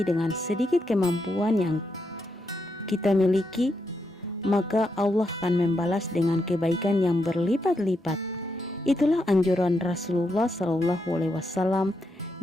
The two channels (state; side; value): normal; both; correlation 0.82